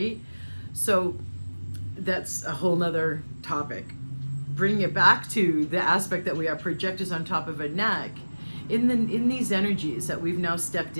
So that's a whole nother topic. Bring it back to the aspect that we are projectors on top of a neck. In these energies that we've now stepped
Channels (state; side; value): inverted; both; correlation -1.00